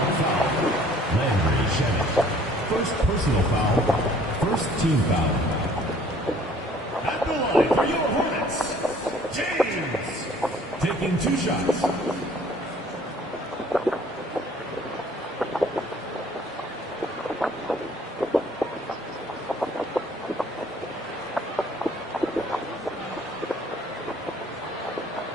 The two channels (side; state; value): both; normal; correlation 0.56